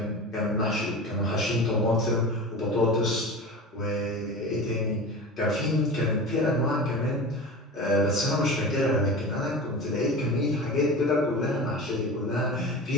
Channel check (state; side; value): normal; both; correlation 0.31